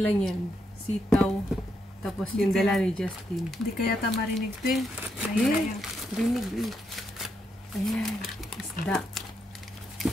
yan? Sitaw. Tapos yung dala ni Justin. Hindi kaya marinig ito eh. Yes, rinig eh. Ayan, isda.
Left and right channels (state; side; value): normal; both; correlation 0.80